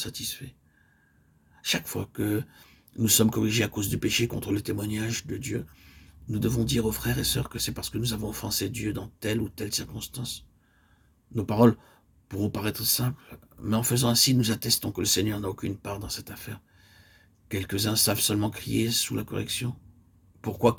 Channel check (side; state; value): both; identical; correlation 1.00